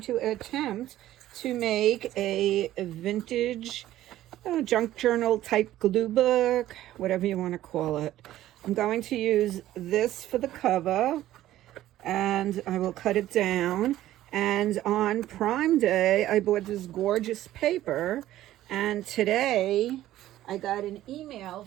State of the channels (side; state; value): left; quieter; 14.0 dB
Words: to attempt to make a vintage junk journal type glue book, whatever you want to call it. I'm going to use this for the cover and I will cut it down. And on Prime Day, I bought this gorgeous paper, and today I got an email